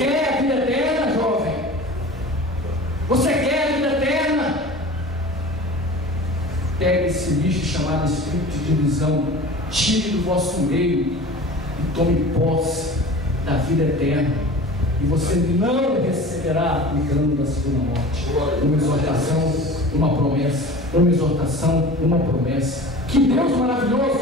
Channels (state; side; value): normal; both; correlation 0.38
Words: a vida eterna, jovem? Você quer a vida eterna? Pegue esse lixo chamado espírito de divisão, tire do vosso meio e tome posse da vida eterna. E você não receberá o dano da segunda morte. Uma exortação, uma promessa. Uma exortação, uma promessa. Que Deus